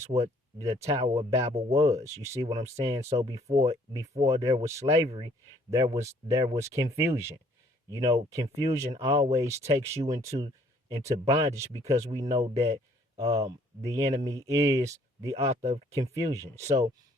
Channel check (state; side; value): normal; both; correlation 0.61